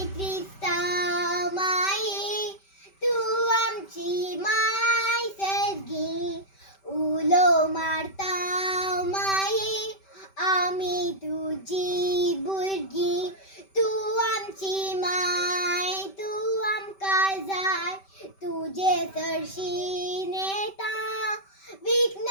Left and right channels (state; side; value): late; right; 5.2 ms